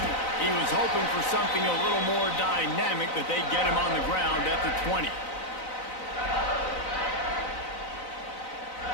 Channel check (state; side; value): late; right; 4.0 ms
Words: He was hoping for something a little more dynamic, but they get him on the ground at the 20.